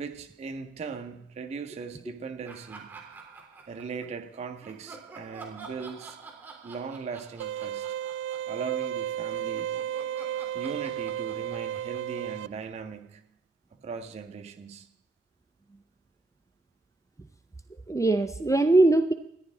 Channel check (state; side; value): quieter; left; 3.4 dB